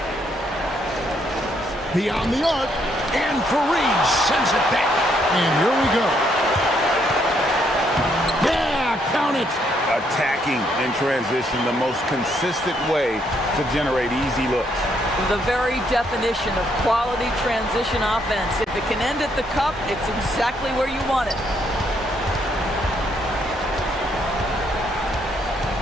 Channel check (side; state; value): both; normal; correlation 0.72